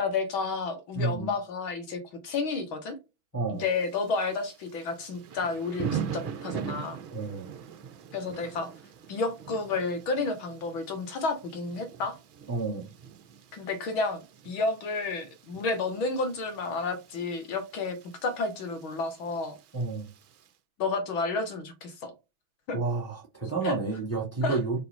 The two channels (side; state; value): right; late; 6.2 ms